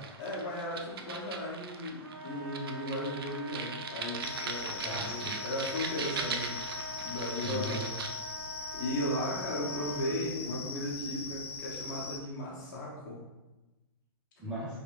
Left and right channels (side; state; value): both; normal; correlation -0.17